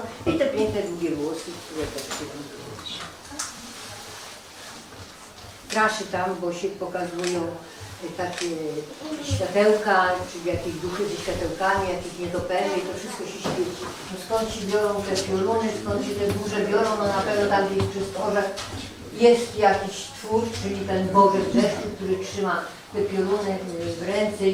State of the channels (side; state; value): both; identical; correlation 1.00